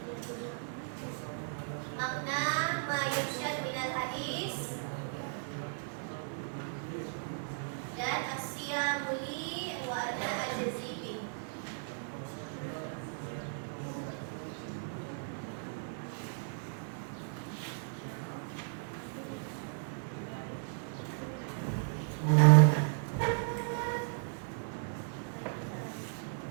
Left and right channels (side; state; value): left; silent; digital silence